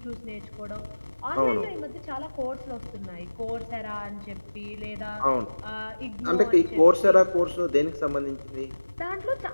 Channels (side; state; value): both; inverted; correlation -1.00